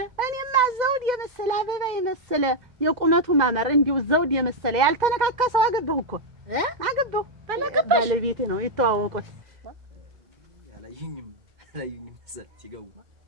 እኔማ ዘውድ የመሰለ አበባ የመሰለ የቁመቱ ማመር እንዲሁ ዘውድ የመሰለ ያልተነካካ ሰው አገባሁ እኮ አገባሁ። ባለቤቴ ነው የተዋወቁት። ያላዩኝም ሲገቡ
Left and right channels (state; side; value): late; left; 2.1 ms